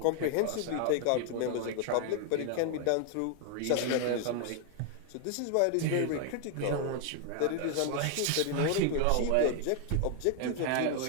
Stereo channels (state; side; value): different; both; correlation 0.00